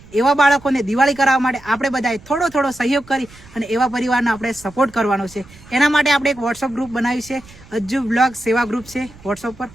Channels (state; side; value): noise; right; rumble, 22 dB below the sound